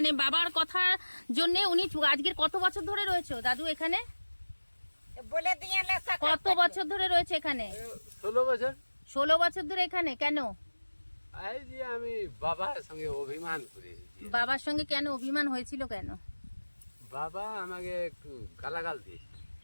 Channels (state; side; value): inverted; both; correlation -1.00